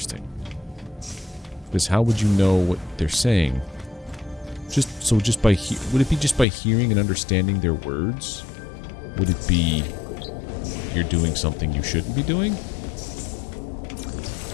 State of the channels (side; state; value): right; drops out; at 6.5 s